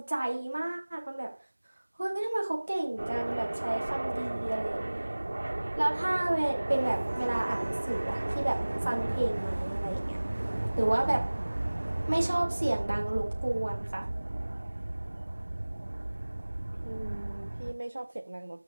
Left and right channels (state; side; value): inverted; both; correlation -1.00